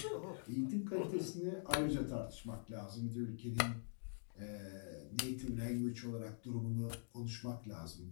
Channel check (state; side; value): silent; right; digital silence